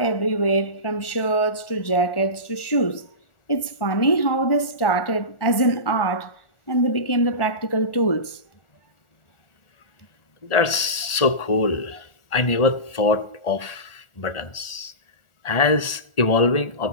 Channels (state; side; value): late; right; 1.4 ms